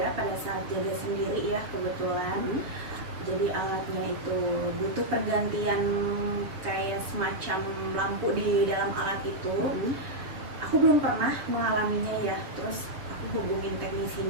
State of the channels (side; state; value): left; late; 6.9 ms